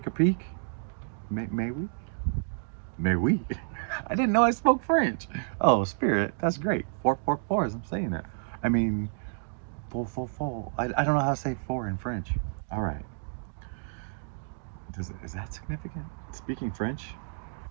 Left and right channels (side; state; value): left; silent; digital silence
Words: a peek. May we? May we? I didn't know I spoke French. Oh, spirit, that's great. 444 as I'm saying it. I mean, full. I don't know how to say four in French. All right. Is that significant? Speaking French?